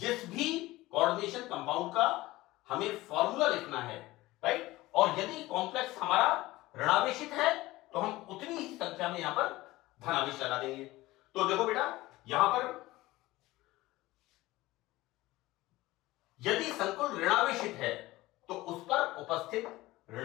भी कोऑर्डिनेशन कंपाउंड का हमें फॉर्मूला लिखना है, राइट, और यदि कॉम्प्लेक्स हमारा ऋणावेशित है तो हम उतनी ही संख्या में यहां पर धनावेश लगा देंगे। तो देखो बेटा यहां पर यदि संकुल ऋणावेशित है तो उस पर उपस्थित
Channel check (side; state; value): right; quieter; 18.5 dB